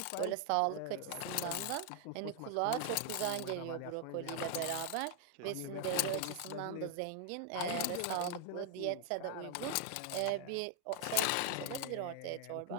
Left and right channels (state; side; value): different; both; correlation 0.00